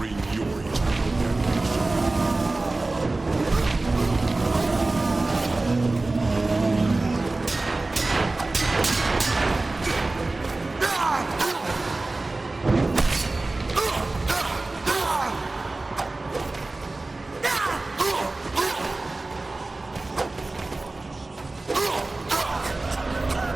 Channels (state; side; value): quieter; left; 3.1 dB